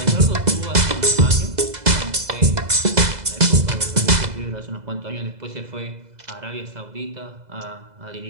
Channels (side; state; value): left; late; 2.0 ms